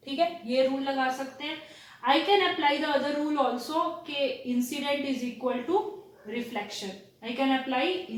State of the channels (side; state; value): both; identical; correlation 1.00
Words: ठीक है, ये रूल लगा सकते हैं. I can apply the other rule also के incident is equal to reflection. I can apply